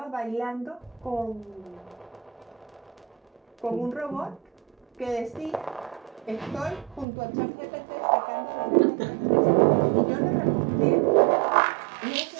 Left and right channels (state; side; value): drops out; left; at 7.1 s